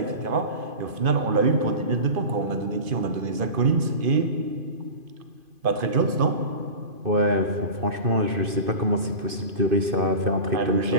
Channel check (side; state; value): left; late; 2.5 ms